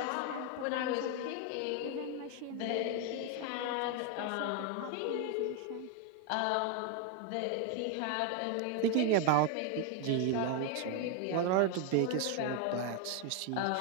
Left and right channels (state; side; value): different; both; correlation 0.01